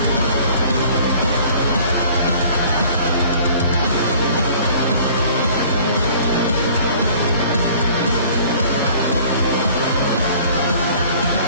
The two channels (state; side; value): inverted; both; correlation -0.51